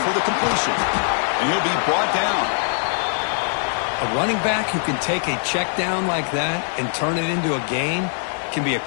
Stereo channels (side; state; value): right; silent; digital silence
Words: the completion. And he'll be brought down. A running back who can take a check down like that and turn it into a gain can be a